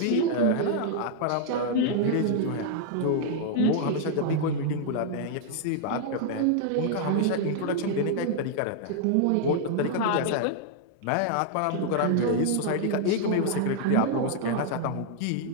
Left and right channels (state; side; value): different; both; correlation -0.01